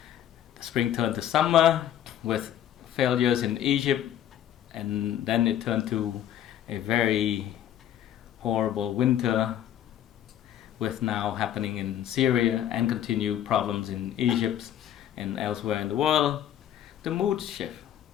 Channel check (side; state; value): right; quieter; 11.0 dB